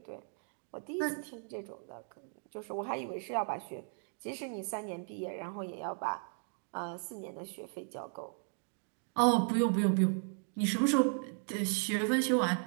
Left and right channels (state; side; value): silent; left; 54 dB below the other